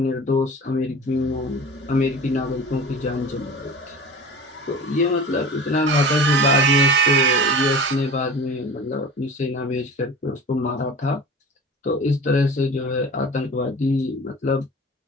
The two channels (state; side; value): normal; both; correlation 0.37